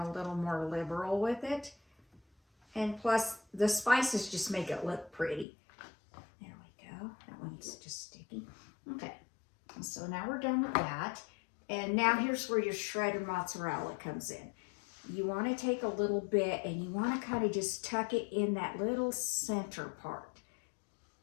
little more liberal with it. And plus, the spices just make it look pretty. There we go. That one's just sticky. Okay, so now we're done with that. And now here's where your shredded mozzarella comes in. You want to take a little bit and you want to kind of just tuck it in that little center part.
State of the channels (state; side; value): drops out; right; at 5.5 s